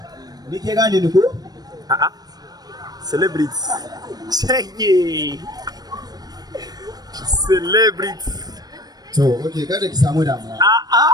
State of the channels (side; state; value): left; late; 0.19 ms